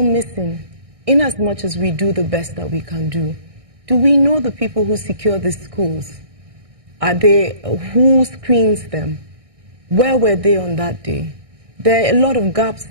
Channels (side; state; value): left; late; 1.6 ms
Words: missing, in as much as we do the best that we can do. Do we know the people who secure the schools? Who screens them? Where were they on that day? There are a lot of gaps